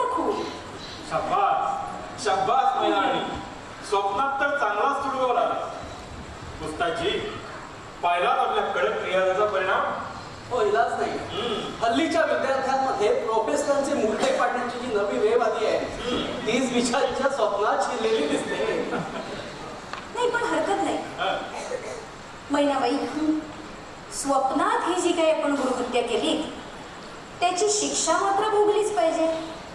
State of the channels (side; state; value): both; identical; correlation 1.00